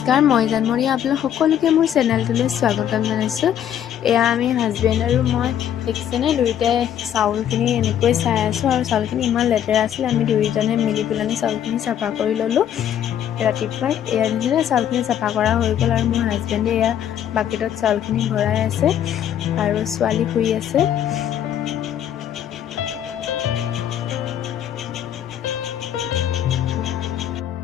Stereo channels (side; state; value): right; quieter; 10.1 dB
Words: মই জানমণি আপোনালোক সকলোকে মোৰ চেনেলটোলৈ স্বাগতম জনাইছোঁ। এয়া আমি হাজবেণ্ড আৰু মই দেখিছেনে দুয়োটাই চাউলখিনি এনেকৈ চাই আছোঁ আৰু চাউলখিনি ইমান লেতেৰা আছিল। আমি দুয়োজনে মিলি পেলাই চাউলখিনি চাফা কৰি ল'লোঁ ৰাতিপুৱাই। এয়া দেখিছেনে চাউলখিনি চাফা কৰা হৈ গ'ল আৰু মোৰ হাজবেণ্ডে এয়া বাকেটত চাউলখিনি ভৰাই আছে আৰু ছোৱালী শুই আছে।